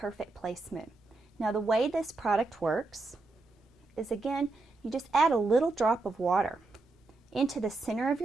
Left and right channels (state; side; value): quieter; left; 3.4 dB